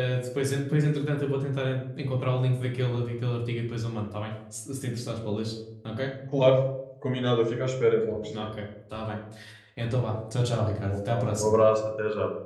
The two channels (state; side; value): identical; both; correlation 1.00